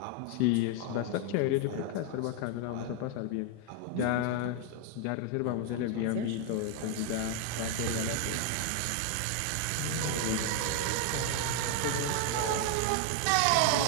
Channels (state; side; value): different; both; correlation 0.00